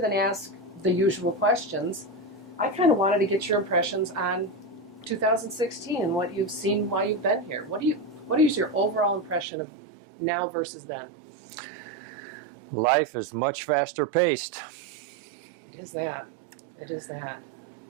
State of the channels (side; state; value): left; drops out; at 9.5 s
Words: ask the usual questions, I kind of wanted to get your impressions on 2016 and what you've seen while you've been here. What is your overall impression of now versus then? Life is much faster paced. It is that. It is that.